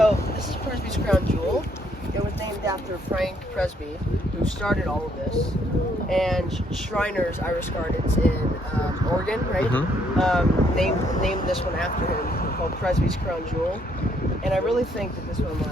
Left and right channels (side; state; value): both; normal; correlation 0.69